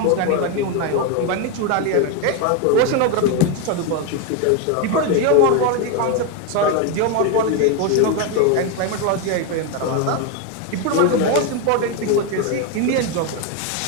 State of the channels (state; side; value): different; both; correlation 0.02